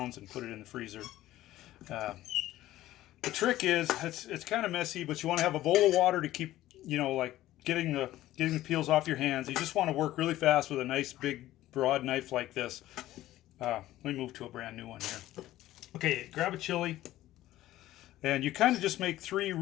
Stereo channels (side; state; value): right; quieter; 14.9 dB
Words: and put it in the freezer. Uh, the trick is it's kind of messy, but you want to have a bowl of water to keep, like getting the peels off your hands. You just want to work really fast with a nice big broad knife like this. Let me move to a brand new one here. Okay, grab a chili, and you kind of just make three